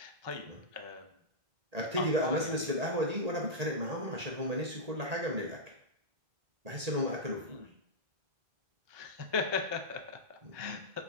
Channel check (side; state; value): left; late; 1.8 ms